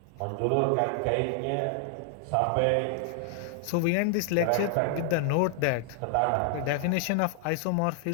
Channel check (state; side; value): different; both; correlation 0.00